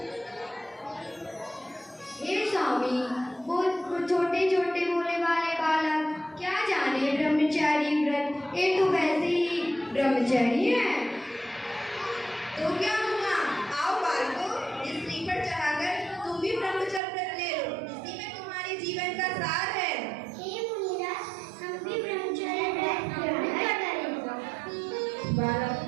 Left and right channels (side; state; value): left; drops out; at 17.0 s